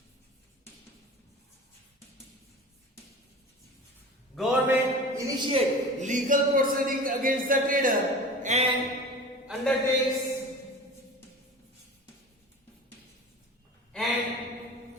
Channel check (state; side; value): normal; both; correlation 0.36